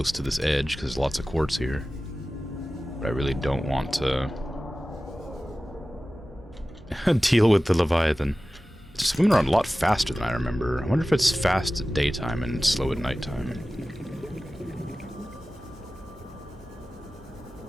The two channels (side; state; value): both; normal; correlation 0.96